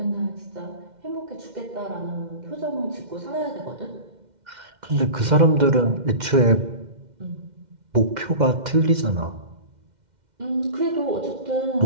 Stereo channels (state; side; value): late; left; 2.1 ms